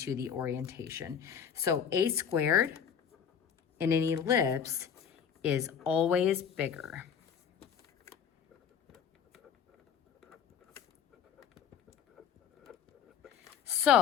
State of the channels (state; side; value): quieter; right; 7.9 dB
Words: the orientation. So a squared in an ellipse is always bigger.